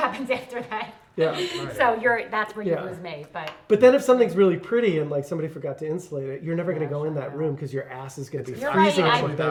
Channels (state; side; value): identical; both; correlation 1.00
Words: after that. Yeah. Right. So that's where you Yeah. lose me. But But then if something's really pretty and like somebody forgot to insulate it, you're never gonna Yeah, go in I that know. room because your ass is gonna be You're freezing right, on the I-